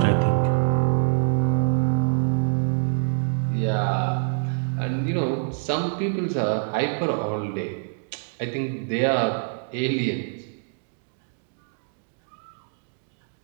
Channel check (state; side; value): silent; left; digital silence